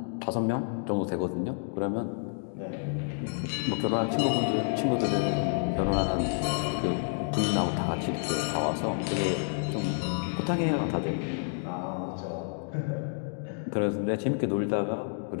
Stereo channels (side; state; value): right; silent; digital silence